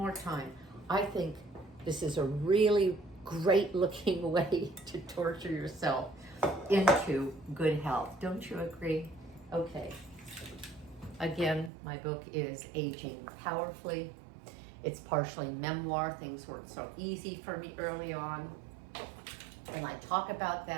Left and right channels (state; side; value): drops out; left; at 11.7 s